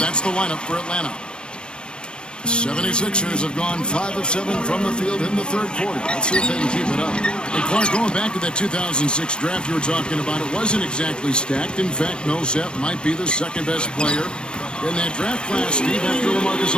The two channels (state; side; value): late; right; 0.054 ms